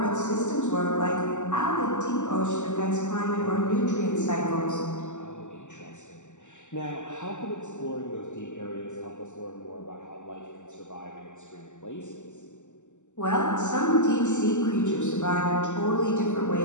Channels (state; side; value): late; right; 0.84 ms